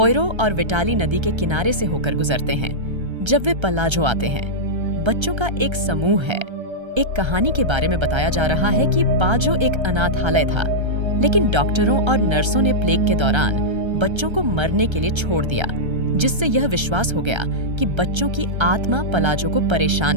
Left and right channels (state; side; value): late; left; 1.3 ms